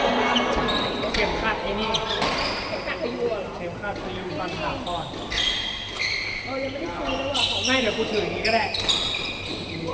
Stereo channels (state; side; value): identical; both; correlation 1.00